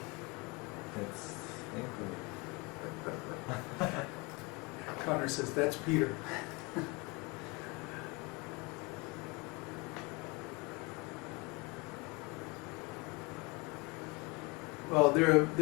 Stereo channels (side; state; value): right; quieter; 27.5 dB